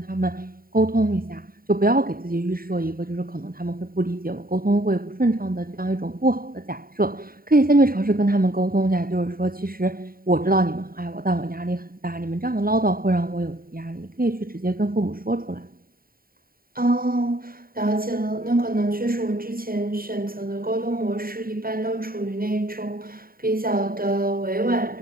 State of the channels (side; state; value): left; late; 0.43 ms